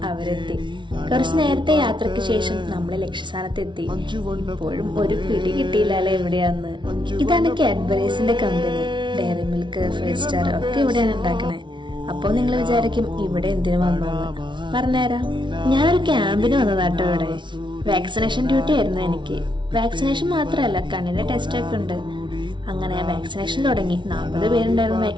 അവരെത്തി. കുറച്ചു നേരത്തെ യാത്രയ്ക്ക് ശേഷം നമ്മൾ ലക്ഷ്യസ്ഥാനത്ത് എത്തി. ഇപ്പോഴും ഒരു പിടി കിട്ടിയില്ലല്ലേ എവിടെയാന്ന്. ഇതാണ് കാഡ്ബറീസിന്റെ കമ്പനി. ഡയറി മിൽക്ക്, 5 സ്റ്റാർ ഒക്കെ ഇവിടെയാണ് ഉണ്ടാക്കണേ. അപ്പോ നിങ്ങൾ വിചാരിക്കും ഇവിടെ എന്തിനു വന്നോന്ന്. പറഞ്ഞുതരാം. ഞാനൊരു ക്യാമ്പിന് വന്നതാട്ടോ ഇവിടെ. വാക്സിനേഷൻ ഡ്യൂട്ടി ആയിരുന്നു എനിക്ക്. വാക്സിനേഷൻ മാത്രമല്ല, കണ്ണിന്റെ ടെസ്റ്റ് ഒക്കെ ഉണ്ട്. അങ്ങനെ വാക്സിനേഷൻ തുടങ്ങി. 40 പേരുണ്ടായിരുന്നു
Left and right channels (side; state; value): left; late; 0.24 ms